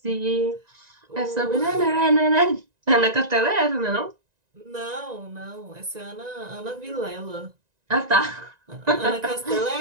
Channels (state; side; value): late; left; 1.9 ms